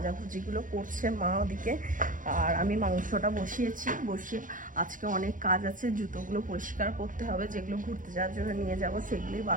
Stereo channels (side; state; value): left; late; 0.38 ms